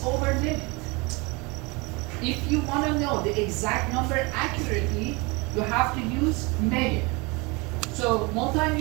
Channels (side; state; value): left; quieter; 27.0 dB